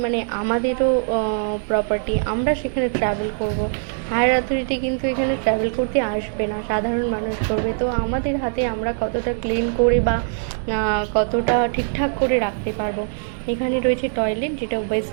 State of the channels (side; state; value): left; silent; digital silence